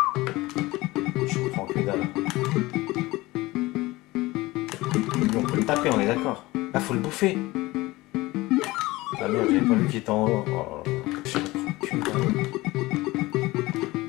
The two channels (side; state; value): right; quieter; 20.0 dB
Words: Je comprends que dalle. Mais on peut le taper, on est d'accord. Ah faut le bouffer. Ah merde, j'avais pas vu qu'il était en haut. Oh, je comprends que dalle.